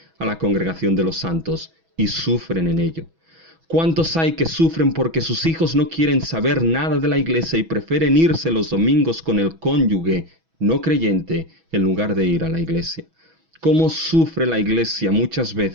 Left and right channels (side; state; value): left; late; 6.1 ms